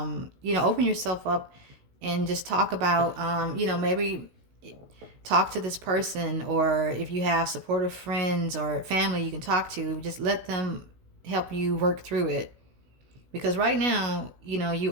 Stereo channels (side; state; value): left; late; 16 ms